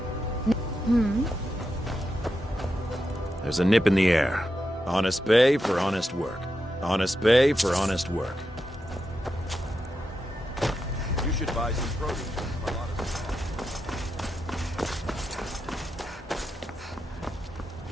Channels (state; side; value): normal; both; correlation 0.87